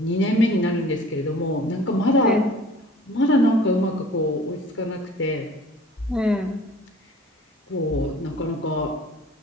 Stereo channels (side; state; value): both; normal; correlation 0.48